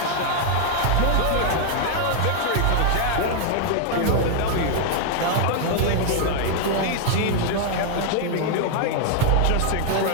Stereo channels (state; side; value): different; both; correlation 0.00